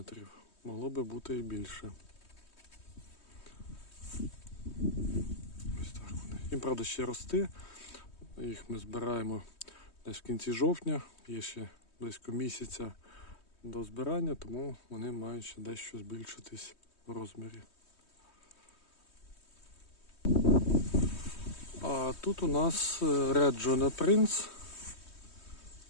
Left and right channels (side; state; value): right; late; 3.2 ms